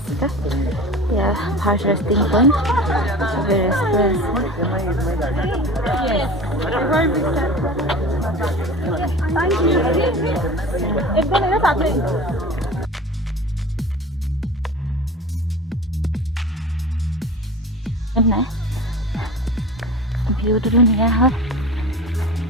ya first resting point we view to ধুনীয়া হয়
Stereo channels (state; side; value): normal; both; correlation 0.36